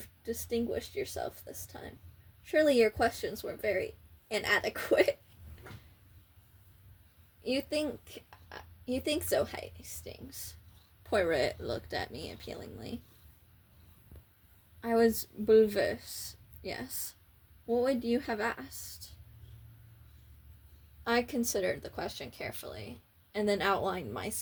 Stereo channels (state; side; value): identical; both; correlation 1.00